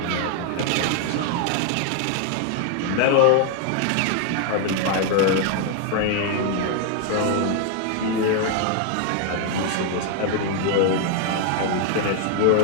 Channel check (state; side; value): different; both; correlation 0.00